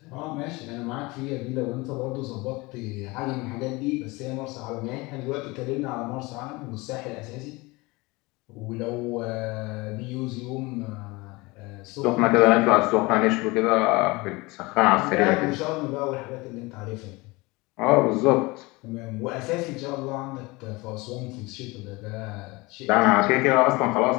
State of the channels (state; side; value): quieter; right; 23.6 dB